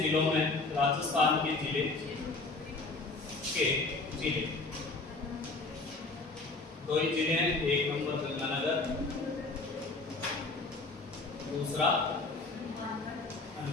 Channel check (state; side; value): quieter; right; 3.5 dB